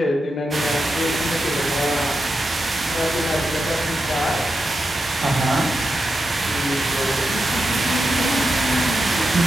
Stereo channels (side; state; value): both; normal; correlation 0.88